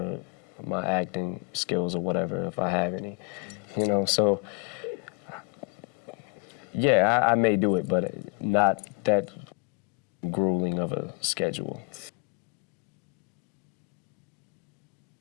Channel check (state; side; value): quieter; right; 34.7 dB